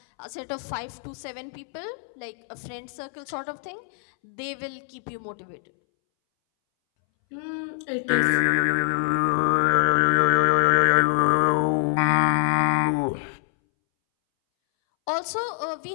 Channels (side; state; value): right; silent; 62 dB below the other